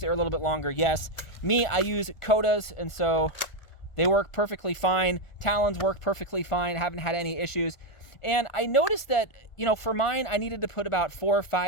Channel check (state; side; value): late; right; 1.4 ms